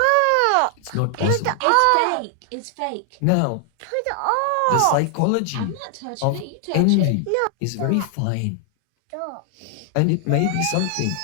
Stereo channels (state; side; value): different; both; correlation 0.00